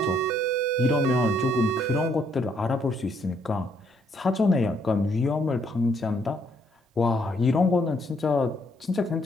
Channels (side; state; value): both; normal; correlation 0.70